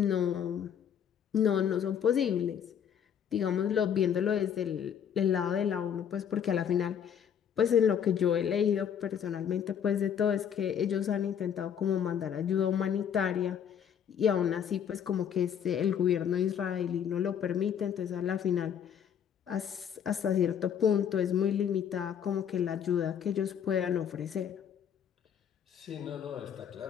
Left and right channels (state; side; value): quieter; right; 8.5 dB